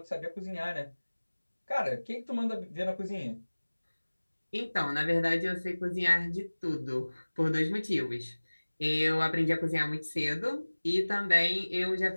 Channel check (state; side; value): inverted; both; correlation -1.00